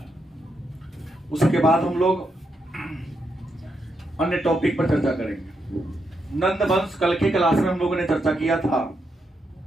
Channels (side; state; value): both; normal; correlation 0.81